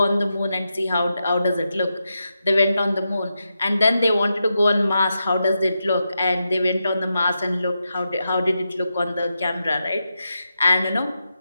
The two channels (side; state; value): both; inverted; correlation -0.88